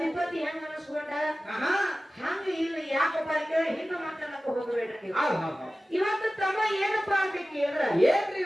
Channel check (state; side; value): normal; both; correlation 0.96